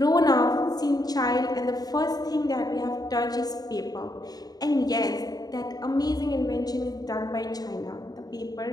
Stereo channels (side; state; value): right; late; 0.19 ms